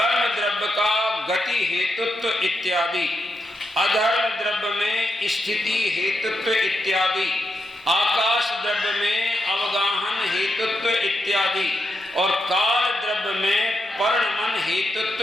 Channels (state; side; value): normal; both; correlation 0.84